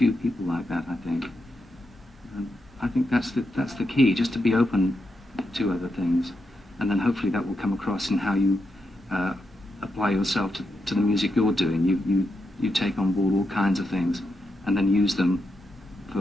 people like that, I think. And I think that's the key, just to be open to other things, and then hopefully that will come across in how you apply yourself to the music you're doing. You take on board all kinds of things, and then use them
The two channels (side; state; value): both; normal; correlation 0.85